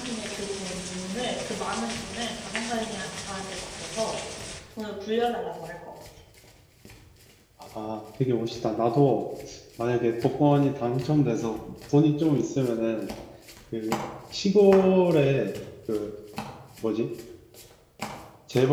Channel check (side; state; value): both; identical; correlation 1.00